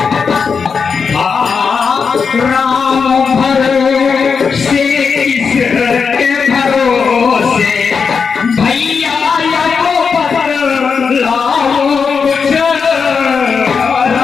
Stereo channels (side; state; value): right; quieter; 5.7 dB